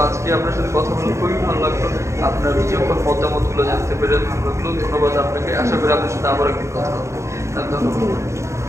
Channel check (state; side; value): late; left; 0.14 ms